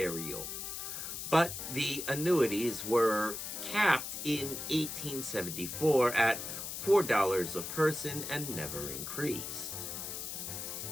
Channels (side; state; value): left; noise; hiss, 6 dB below the sound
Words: But the annuities were capped in 1874 at $4 a person and never increased.